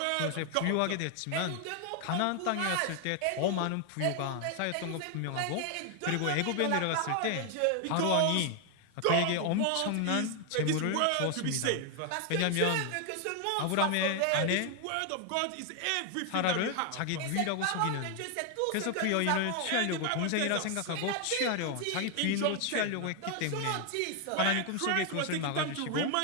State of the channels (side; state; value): both; different; correlation 0.00